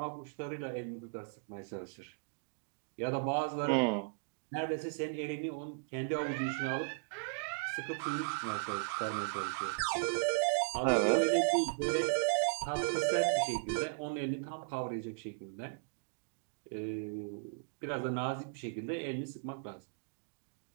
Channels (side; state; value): left; silent; digital silence